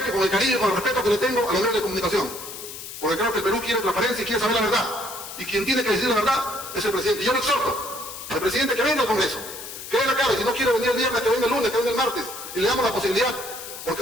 con el cariño y con el respeto que le tengo a los medios de comunicación. Porque creo que el Perú quiere transparencia y quiere saber la verdad. Y quien tiene que decir la verdad es el presidente. Y yo le exhorto al presidente que venga al Congreso, que venga acá, y si no quiere venir el viernes, que venga el lunes, que venga el martes, y le damos la posibilidad,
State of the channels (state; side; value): noise; left; hiss, 11 dB below the sound